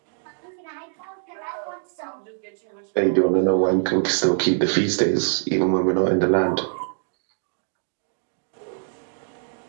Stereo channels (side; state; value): left; silent; digital silence